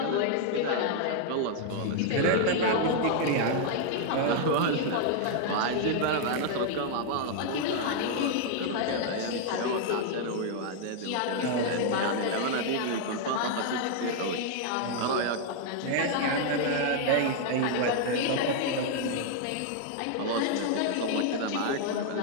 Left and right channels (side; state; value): both; different; correlation 0.00